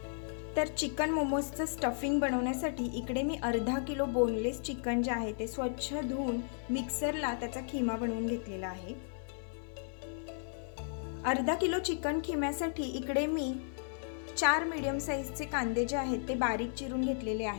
तर चिकन मोमोजचं स्टफिंग बनवण्यासाठी इकडे मी अर्धा किलो बोनलेस चिकन जे आहे ते स्वच्छ धुवून मिक्सरला त्याचा खिमा बनवून घेतलेला आहे। अर्धा किलो चिकन खिम्यासाठी इकडे मी 4 मीडियम साइजचे कांदे जे आहेत ते बारीक चिरून घेतलेले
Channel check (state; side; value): silent; right; digital silence